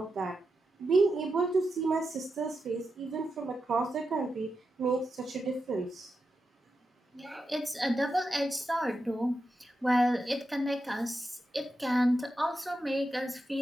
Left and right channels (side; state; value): both; normal; correlation 0.88